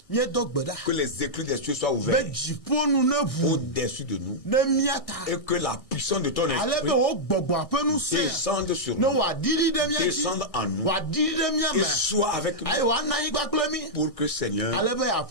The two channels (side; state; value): right; late; 1.6 ms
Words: que les éclus des cieux soient ouverts au-dessus de nous et que la puissance de ton esprit descende sur nous, descende en nous et soit avec nous pour que, Seigneur,